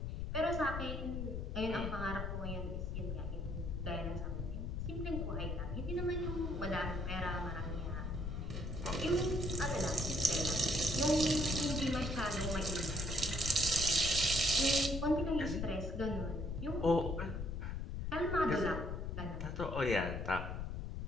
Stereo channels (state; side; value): noise; left; rumble, 3 dB below the sound